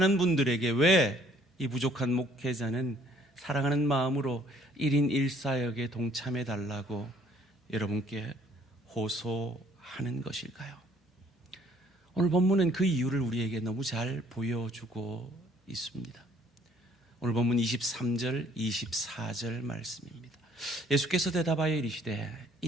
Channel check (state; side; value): normal; both; correlation 0.62